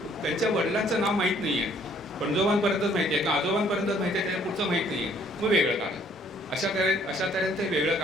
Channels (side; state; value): both; normal; correlation 0.62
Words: त्यांच्या वडिलांचं नाव माहीत नाही आहे, पणजोबांपर्यंतच माहिती आहे का आजोबांपर्यंतच माहिती आहे, त्याच्या पुढचं माहीत नाही आहे, मग वेगळं काढलं. अशा तऱ्हेने ते वेगळं